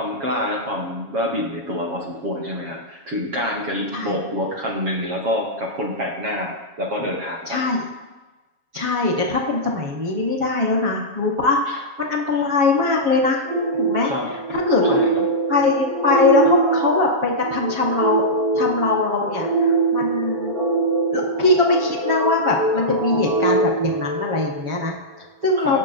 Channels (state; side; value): late; left; 7.3 ms